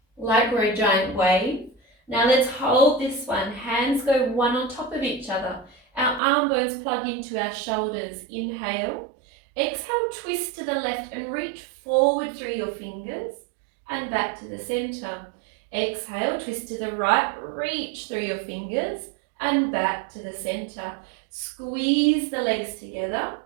like we're a giant wave. Now let's hold this one. Hands go one on top of each other. Our arm bones plug into our shoulders. Inhale. Exhale, twist to the left and reach forward through your fingers and back to the center. Exhale, twist to the right, reach through your fingers and back to the center. Squeeze the legs together,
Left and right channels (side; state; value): left; drops out; at 6.2 s